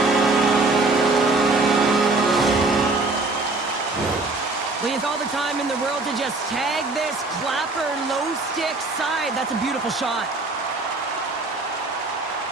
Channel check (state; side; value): quieter; left; 3.3 dB